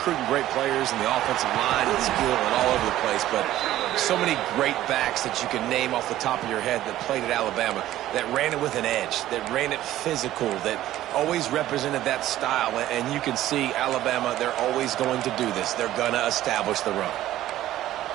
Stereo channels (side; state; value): left; quieter; 13.9 dB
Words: great players in the offensive line and skill and all over the place, but so many great backs that you can name off the top of your head that played at Alabama, that ran it with an edge, that ran it physical, that always represented that style. And you can see Alabama, they're always going to do this. They're going to establish the run.